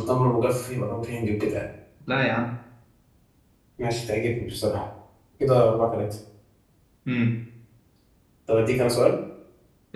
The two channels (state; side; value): identical; both; correlation 1.00